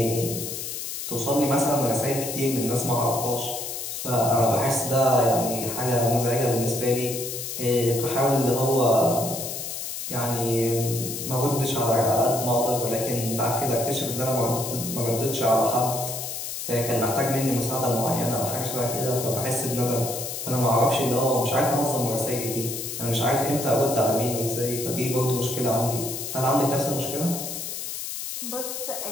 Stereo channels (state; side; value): noise; left; hiss, 6 dB below the sound